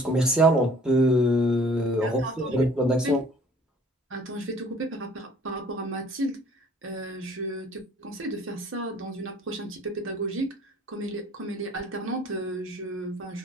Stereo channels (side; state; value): both; normal; correlation 0.53